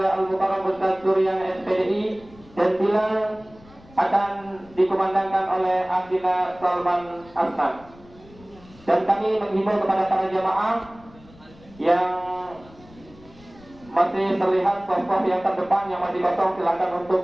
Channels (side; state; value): left; noise; rumble, 24 dB below the sound